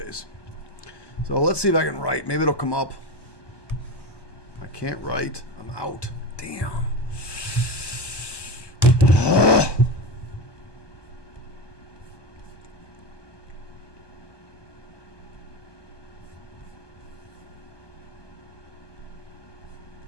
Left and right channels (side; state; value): right; late; 1.1 ms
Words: So let's see if I can write. Maybe it'll come up. I can't write. I'm out. Damn.